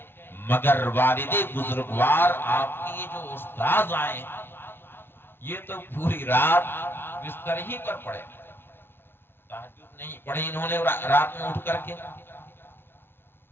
مگر والد بزرگوار آپ کی جو استاذ آئے یہ تو پوری رات بستر ہی پر پڑے، تہجد نہیں پڑھی انہوں نے رات میں اٹھ کر کے۔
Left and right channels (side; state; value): right; late; 0.11 ms